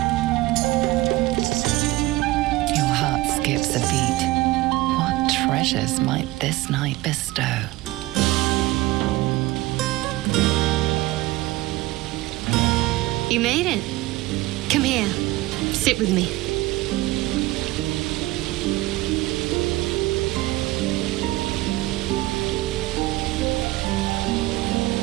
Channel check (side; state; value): left; quieter; 18.6 dB